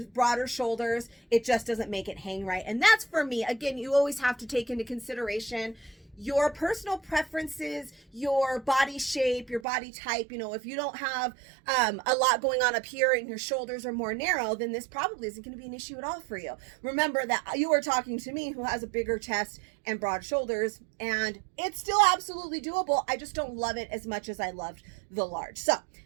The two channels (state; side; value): drops out; left; at 9.7 s